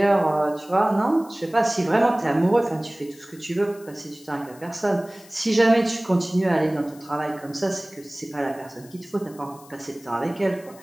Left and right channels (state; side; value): noise; left; hiss, 23 dB below the sound